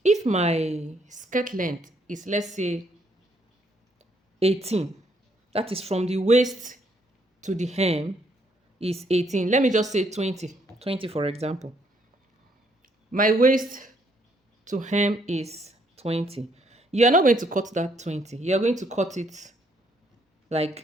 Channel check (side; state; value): both; normal; correlation 0.70